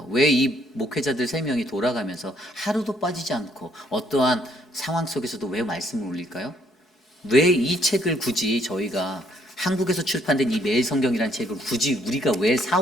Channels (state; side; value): normal; both; correlation 0.68